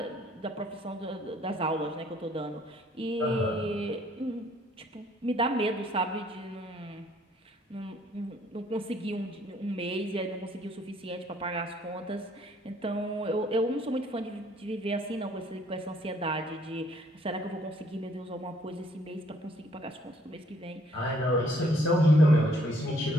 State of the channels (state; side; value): normal; both; correlation 0.64